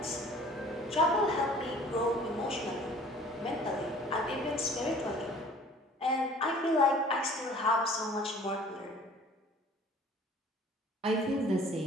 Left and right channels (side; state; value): both; normal; correlation 0.50